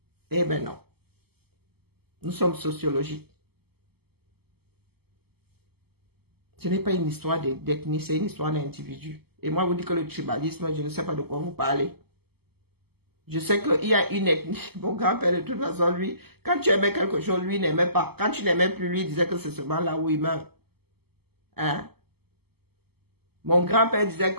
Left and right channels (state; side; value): late; left; 0.96 ms